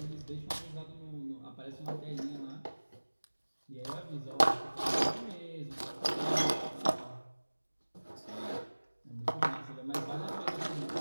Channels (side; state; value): both; inverted; correlation -1.00